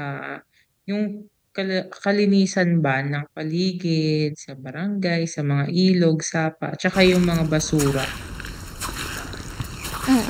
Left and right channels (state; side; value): identical; both; correlation 1.00